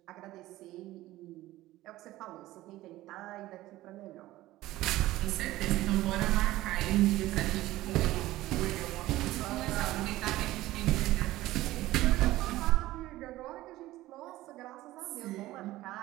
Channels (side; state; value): left; quieter; 16.6 dB